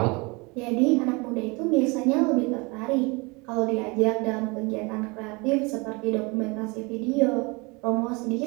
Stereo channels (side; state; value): left; quieter; 27.3 dB